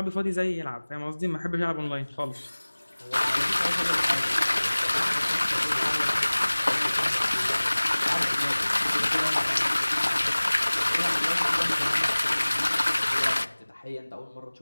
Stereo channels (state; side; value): inverted; both; correlation -1.00